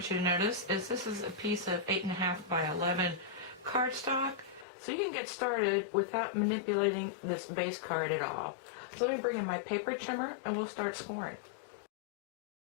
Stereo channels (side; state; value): right; drops out; at 4.7 s